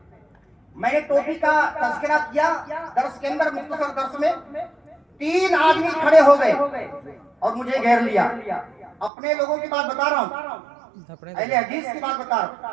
میں نے ٹوپی کا تذکرہ کیا درس کے اندر، مختصر درس میں 3 آدمی کھڑے ہو گئے اور مجھے گھیر لیا۔ اپنے لوگوں کی بات بتا رہا ہوں، اہل حدیث کی بات بتا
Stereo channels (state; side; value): drops out; left; at 9.1 s